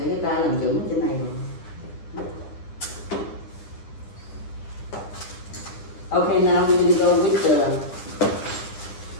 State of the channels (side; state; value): right; late; 9.8 ms